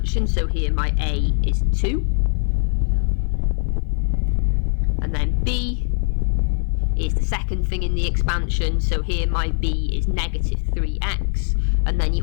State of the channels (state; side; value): silent; right; 55 dB below the other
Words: so here my a is 2, and then b is the second thing in the expansion, so here my b is negative 3x, and then